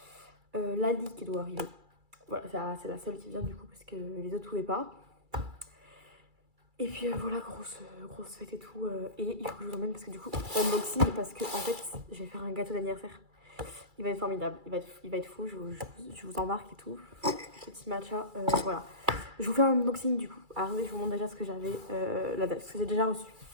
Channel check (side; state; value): left; late; 2.3 ms